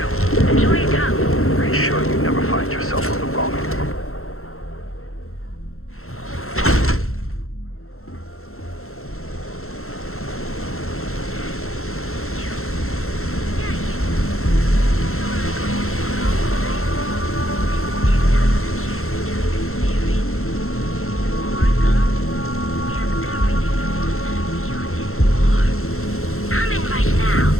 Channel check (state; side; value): late; right; 0.62 ms